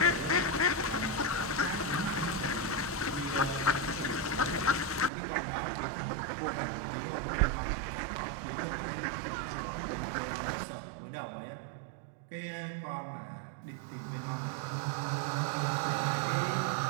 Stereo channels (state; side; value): drops out; left; at 5.1 s